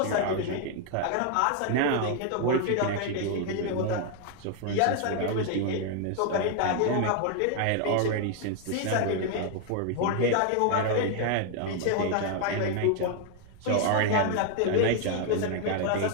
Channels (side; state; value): both; different; correlation 0.01